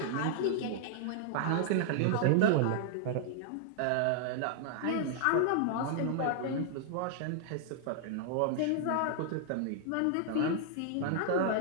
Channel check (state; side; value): different; both; correlation -0.01